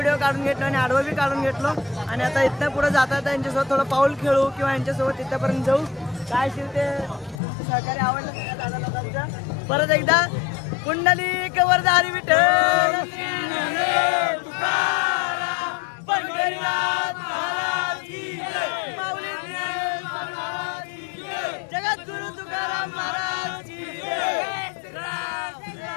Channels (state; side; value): drops out; right; at 7.4 s